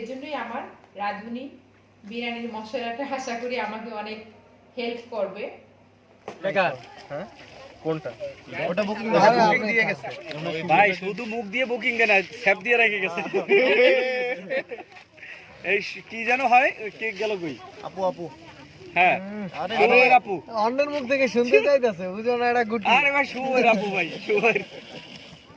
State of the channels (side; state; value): both; identical; correlation 1.00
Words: আমার রাঁধুনি বিরিয়ানির মশলাটা আশা করি আমাকে অনেক হেল্প করবে। হ্যাঁ কোনটা? ওটা বুকিং দিয়ে গেছে ভাই, শুধু মুখ দিয়ে বুকিং কেন, স্যাপ দিয়ে রেখে গেছে। এই কি যেন হয়, কেক গেল কই? আপু আপু হ্যাঁ শুভের আপু। অন্যের মুখ থেকে শুনতে চাইতেছে, বুঝো না এটা গুটি। আরে ভাই শুভের আপু, ভাই শুভের।